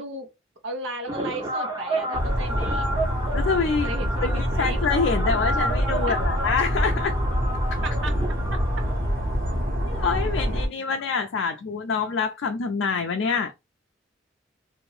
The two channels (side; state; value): both; normal; correlation 0.47